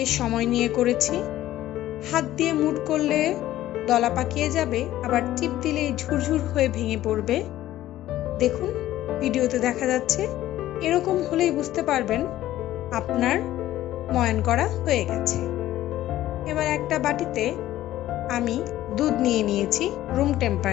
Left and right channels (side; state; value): right; quieter; 14.2 dB